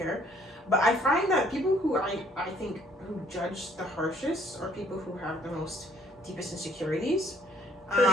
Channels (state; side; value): normal; both; correlation 0.62